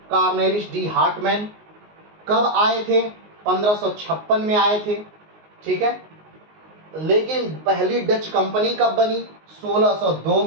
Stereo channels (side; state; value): left; late; 19 ms